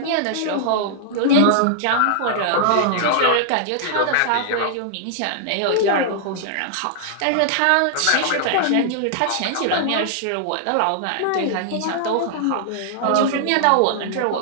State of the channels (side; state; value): both; different; correlation -0.01